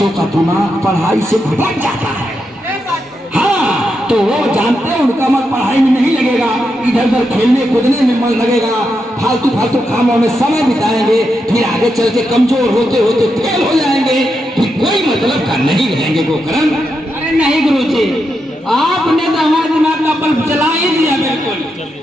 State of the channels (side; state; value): both; normal; correlation 0.84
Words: का दिमाग पढ़ाई से भटक जाता है। हाँ, तो वो जानते हैं उनका मन पढ़ाई में नहीं लगेगा, इधर उधर खेलने कूदने में मन लगेगा, फालतू फालतू कामों में समय बिताएंगे, फिर आगे चल के कमजोर होते होते फेल हो जाएंगे, फिर कोई मतलब का नहीं रहेंगे गोकर्ण। अरे नहीं गुरुजी, आपने तो हमारे दिमाग का बल्ब जला ही दिया बिल्कुल।